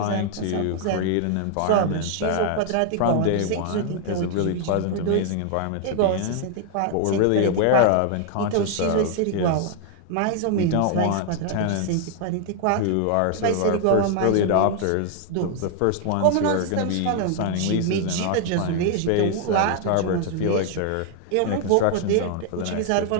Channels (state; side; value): different; both; correlation 0.00